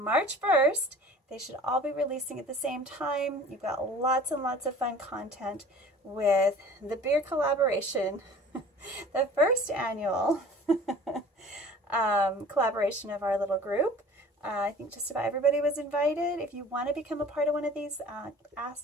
1st, they should all be releasing at the same time. You've got lots and lots of fun content with the beer collaboration, the first annual collaboration of our little group. I think just about everybody was invited. If you want to become a part of one of these,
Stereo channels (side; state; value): both; normal; correlation 0.45